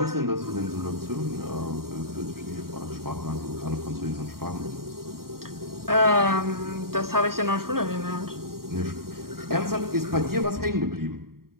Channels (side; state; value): left; late; 0.93 ms